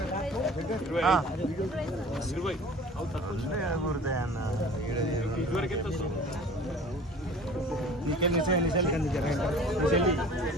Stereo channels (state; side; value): normal; both; correlation 0.44